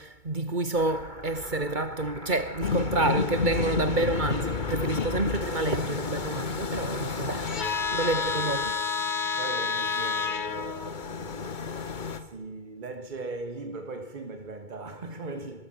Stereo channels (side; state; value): left; late; 2.2 ms